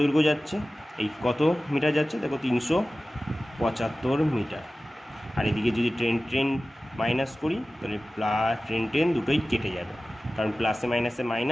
যাচ্ছে, এই কত মিটার যাচ্ছে দেখো 375 মিটার। আর এদিকে যদি ট্রেন মাইনাস করি তাহলে ট্রেন দুটোই কেটে যাবে, কারণ প্লাসে মাইনাসে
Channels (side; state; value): both; normal; correlation 0.96